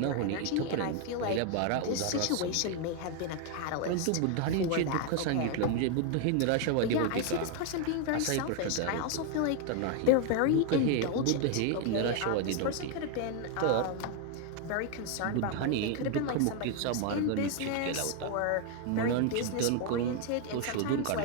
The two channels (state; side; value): different; both; correlation 0.01